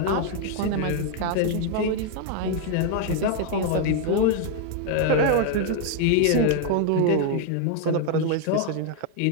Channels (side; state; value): both; different; correlation 0.00